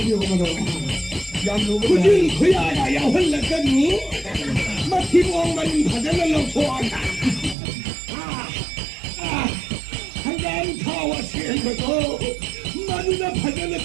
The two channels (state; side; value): drops out; left; at 7.6 s